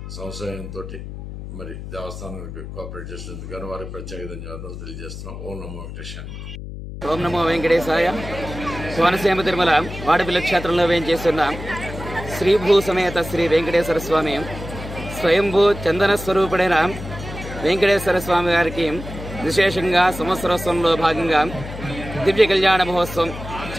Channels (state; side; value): noise; left; hum, 10 dB below the sound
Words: సంశయంతో మరి దేవస్థానానికి కోఆపరేట్ చేసినందుకు కానీ వారికి ప్రత్యేక ధన్యవాదాలు తెలియజేస్తున్నాం. ఓం నమో వెంకటేశాయ. ఓం నమో వెంకటేశాయ. కోనసీమ తిరుమల వాడపల్లి క్షేత్రంలో వేయించేస్తున్న శ్రీభూ సమేత శ్రీ వెంకటేశ్వర స్వామి స్వయంభూ చందన స్వరూపుడైన వెంకటేశ్వర స్వామి గారికి విశేషంగా సంవత్సరోత్సవంలో భాగంగా దివ్య కళ్యాణ మహోత్సవం